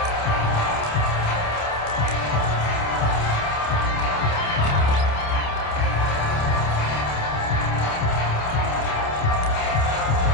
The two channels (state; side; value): late; right; 28 ms